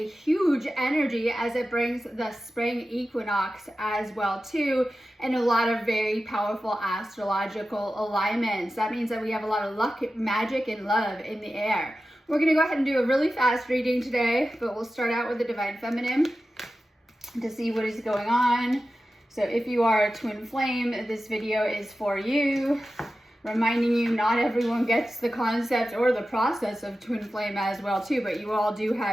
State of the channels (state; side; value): normal; both; correlation 0.93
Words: huge energy as it brings the spring equinox as well too, and a lot of very powerful astrological alignments. That means that we have a lot of luck, magic, and love in the air. We're going to go ahead and do a really fast reading today, but we'll start out with the Divine Feminine to see what is going on. So if you are a twin flame, this video is for you. Reminding you, not everyone gets the concept or the process of twin flame as well too, but you all do